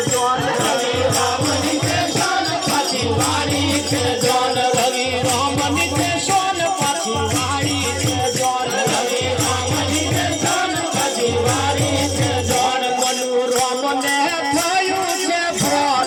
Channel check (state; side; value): identical; both; correlation 1.00